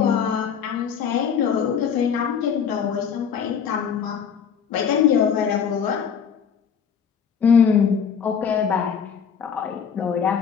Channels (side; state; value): right; quieter; 7.1 dB